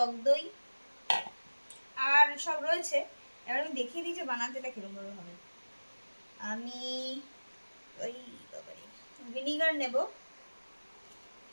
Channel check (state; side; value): inverted; both; correlation -1.00